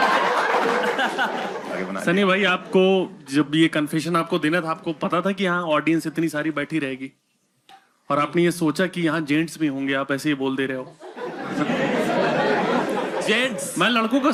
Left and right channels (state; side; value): identical; both; correlation 1.00